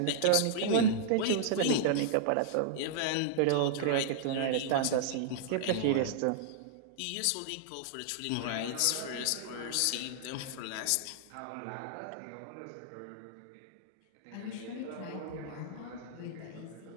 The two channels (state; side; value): different; both; correlation -0.01